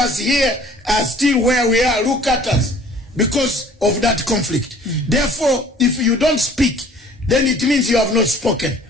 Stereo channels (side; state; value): both; normal; correlation 0.52